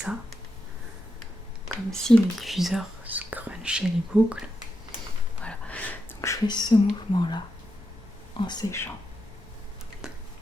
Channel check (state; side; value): normal; both; correlation 0.86